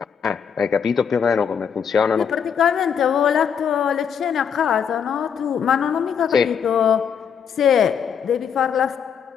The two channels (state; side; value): quieter; right; 7.4 dB